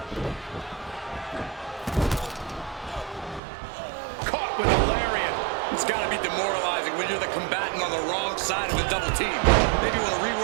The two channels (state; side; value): drops out; left; at 3.4 s